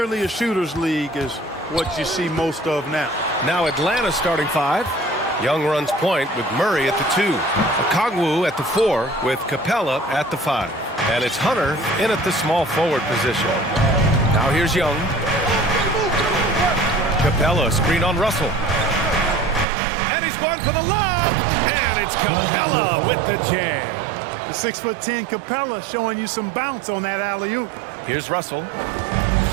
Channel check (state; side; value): drops out; left; at 19.7 s